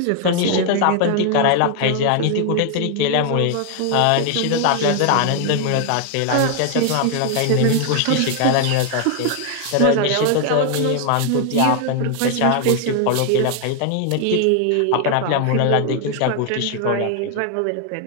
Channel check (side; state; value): both; different; correlation 0.00